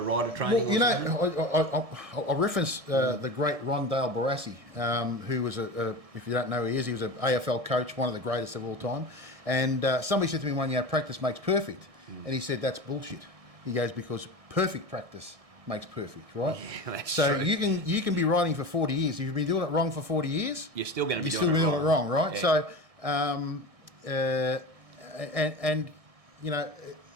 Rider Training. Well, I reference the great Ron Dale Barassi, who was if you don't know who he is, he was an AFL coach, one of the greatest of all time. And somebody said to me one year, practice makes perfect. And he said, that's bullshit. He goes, because perfect practice makes perfect, right? Yeah, that's so true. you can be riding for 40 years. If you've been doing it wrong for 40 years, you're still going to be doing it wrong, right? Yeah. So,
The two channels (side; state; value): left; late; 1.6 ms